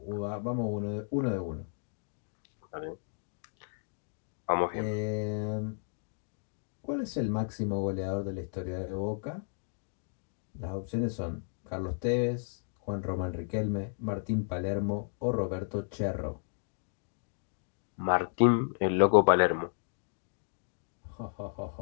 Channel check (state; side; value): silent; right; digital silence